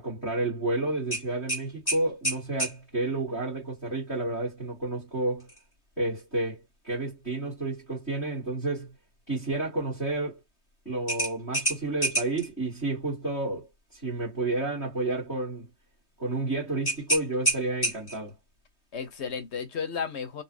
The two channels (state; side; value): late; right; 3.2 ms